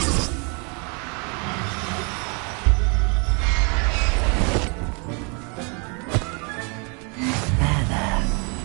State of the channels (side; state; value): left; quieter; 34.5 dB